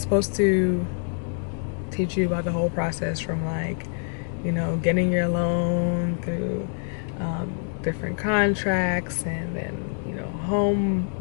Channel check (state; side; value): silent; right; 61 dB below the other